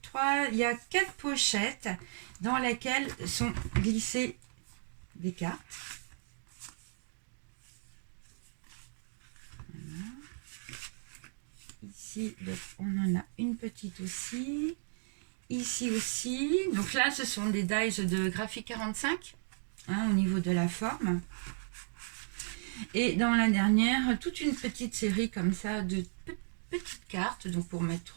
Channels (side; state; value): left; silent; digital silence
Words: il y a 4 pochettes dans lesquelles sont glissées des cartes. Voilà. Ici, donc, on en a une petite aussi. Ici aussi. Donc là, ce sont des dies de Graphic 45, hein, au niveau de la forme. Et dans la dernière, toute une petite série comme ça de petites cartes, donc pour